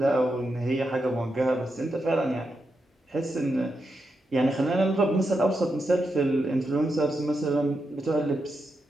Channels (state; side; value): normal; both; correlation 0.85